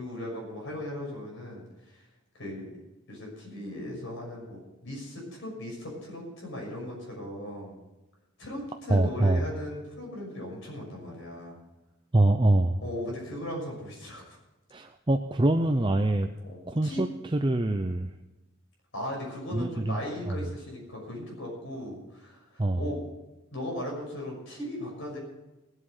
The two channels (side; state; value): both; normal; correlation 0.81